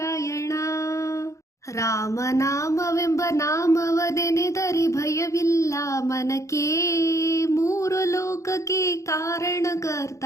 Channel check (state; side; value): late; right; 0.15 ms